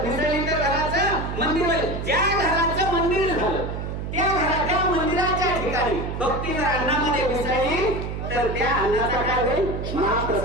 मिसळली तर घराचं मंदिर होईल ज्या घराचं मंदिर झालं त्या मंदिराच्या ठिकाणी भक्ती जर अन्नामध्ये मिसळली तर त्या अन्नाचा काय होईल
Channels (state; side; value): noise; right; hum, 5 dB below the sound